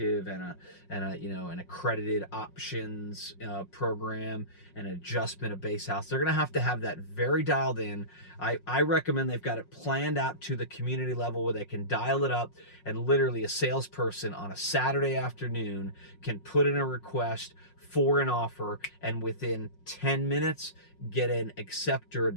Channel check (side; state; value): right; late; 5.5 ms